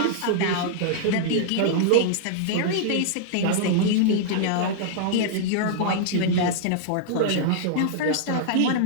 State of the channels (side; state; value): both; different; correlation -0.02